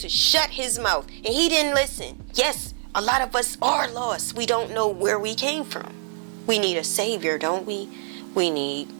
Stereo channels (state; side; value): silent; left; 58 dB below the other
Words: shut his mouth, and he didn't listen. Yes, a lot of us are lost. We don't know where we came from. We need a savior, don't we? We